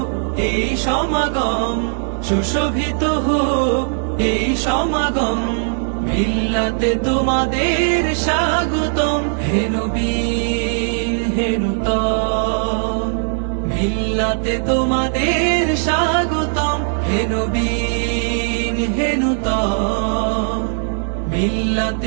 এই সমাগম, সুশোভিত হোক এই সমাগম, মিল্লাতে তোমাদের স্বাগতম। হে নবী হে নূতন, মিল্লাতে তোমাদের স্বাগতম। হে নবী হে নূতন,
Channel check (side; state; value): left; silent; 66 dB below the other